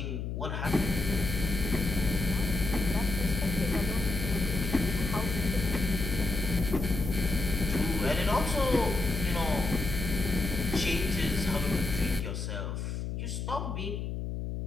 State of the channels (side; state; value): left; noise; hum, 4 dB below the sound